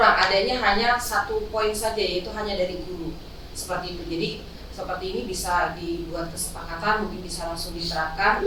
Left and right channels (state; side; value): identical; both; correlation 1.00